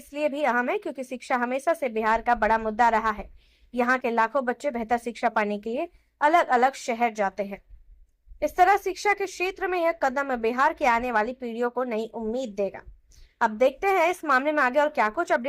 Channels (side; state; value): both; identical; correlation 1.00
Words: भी अहम है क्योंकि शिक्षा हमेशा से बिहार का बड़ा मुद्दा रहा है। यहाँ के लाखों बच्चे बेहतर शिक्षा पाने के लिए अलग अलग शहर जाते हैं। इस तरह शिक्षा के क्षेत्र में यह कदम बिहार की आने वाली पीढ़ियों को नई उम्मीद देगा। अब देखते हैं इस मामले में आगे और क्या कुछ